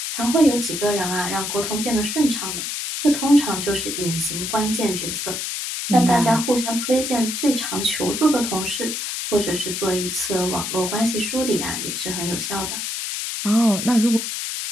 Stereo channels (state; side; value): noise; left; hiss, 4 dB below the sound